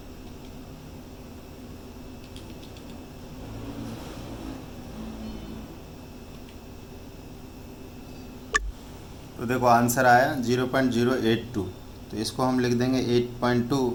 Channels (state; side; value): identical; both; correlation 1.00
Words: तो देखो आंसर आया 0.082। तो इसको हम लिख देंगे 8.2,